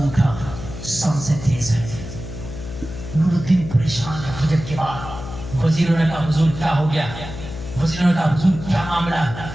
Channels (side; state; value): left; noise; hum, 10 dB below the sound